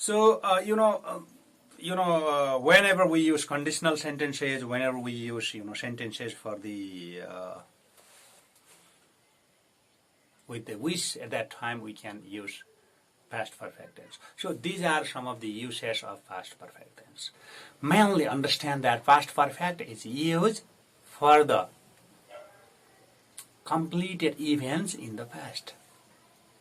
whenever we use conditional sentences, whenever we use, sentences for the, with the wish at that time, we can use past perfect tense. So these are some of the uses of past perfect tense. Mainly understand that past perfect is used for the completed events in the past.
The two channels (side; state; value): both; identical; correlation 1.00